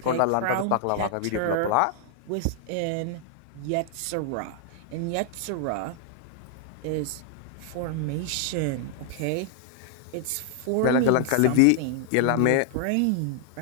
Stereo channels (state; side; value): different; both; correlation -0.01